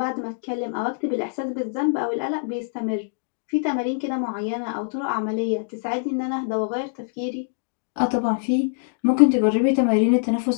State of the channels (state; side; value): silent; right; digital silence